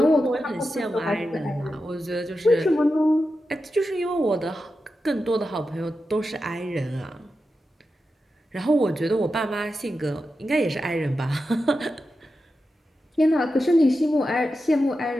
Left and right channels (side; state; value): both; normal; correlation 0.90